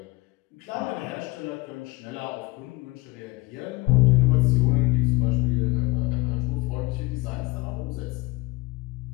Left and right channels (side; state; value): right; quieter; 20.6 dB